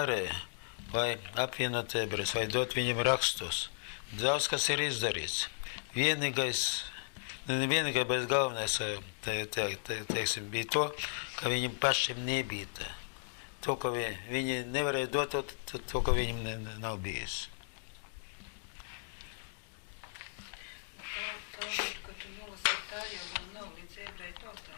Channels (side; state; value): right; silent; digital silence